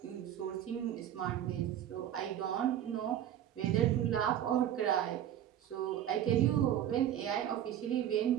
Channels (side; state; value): left; quieter; 11.0 dB